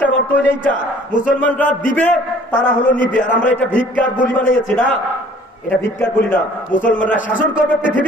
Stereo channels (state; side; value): normal; both; correlation 0.53